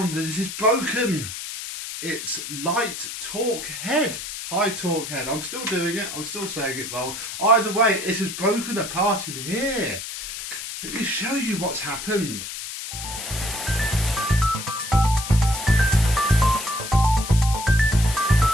that it is broken. It's light torque head, high torque head. I'm still doing it, I'm still saying it wrong. Either way, it has broken apart in here. Let me show you what's happened.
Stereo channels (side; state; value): left; noise; hiss, 8 dB below the sound